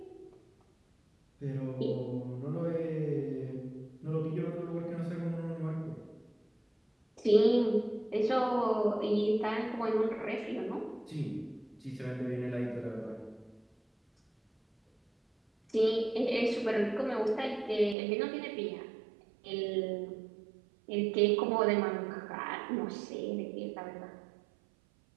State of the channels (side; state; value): left; drops out; at 17.9 s